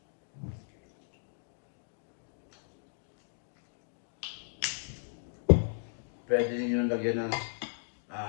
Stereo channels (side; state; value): right; silent; digital silence